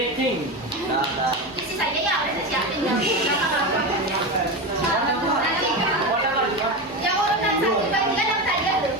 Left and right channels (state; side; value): normal; both; correlation 0.19